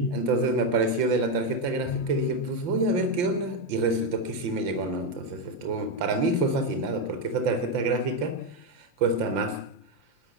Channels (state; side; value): late; left; 5.8 ms